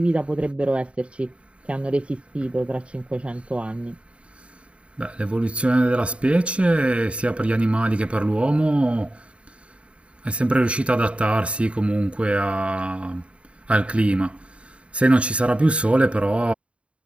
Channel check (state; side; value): late; left; 0.060 ms